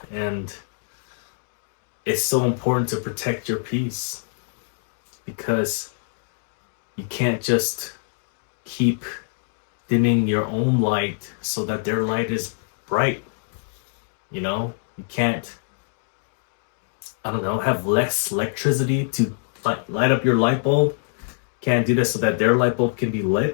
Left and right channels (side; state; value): right; silent; digital silence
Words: And it's so important to protect your peace, because you can't just keep dimming your own light so that their light is bright. You can't, have less electricity to light up your light bulb. Can't do this so that their light bulb can be